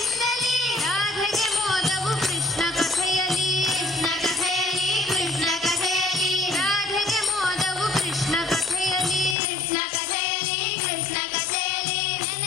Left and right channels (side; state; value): right; drops out; at 9.3 s